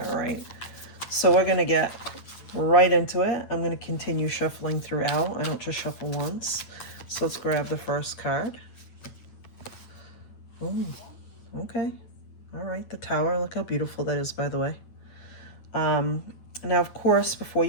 all right? So we're going to get right into it. I'm going to continue shuffling throughout. I don't just shuffle once. So let's grab the first card. Oh, okay. All right, the Tower. Look how beautiful that is, by the way. Now, of course, before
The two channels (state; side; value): late; right; 8.8 ms